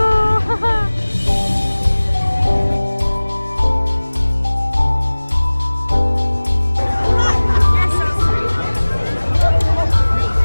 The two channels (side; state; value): both; inverted; correlation -1.00